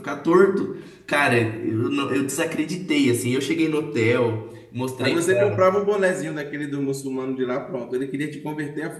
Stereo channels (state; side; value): identical; both; correlation 1.00